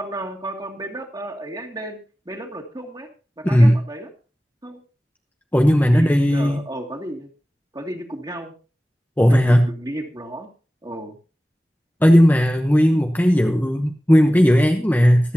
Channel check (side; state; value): both; normal; correlation 0.96